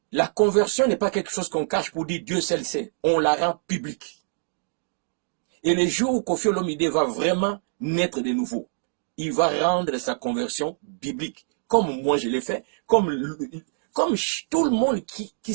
la conversion n'est pas quelque chose qu'on cache pour dire Dieu seul sait. On la rend publique. Et le jour où Koffi Olomide va vraiment naître de nouveau, il va rendre sa conversion biblique. Comme moi je l'ai fait, comme tout le monde qui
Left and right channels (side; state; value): left; silent; digital silence